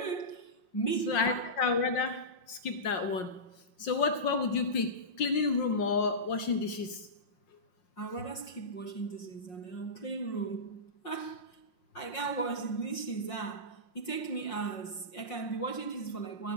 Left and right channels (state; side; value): late; right; 5.6 ms